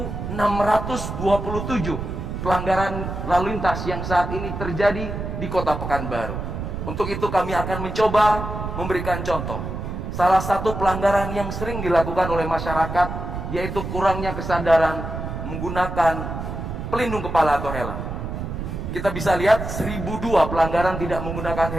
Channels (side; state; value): right; noise; rumble, 5 dB below the sound